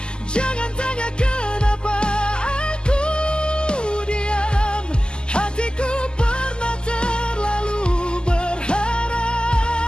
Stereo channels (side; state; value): right; late; 0.047 ms